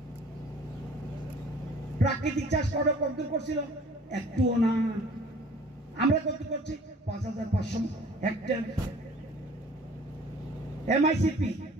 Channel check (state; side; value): normal; both; correlation 0.50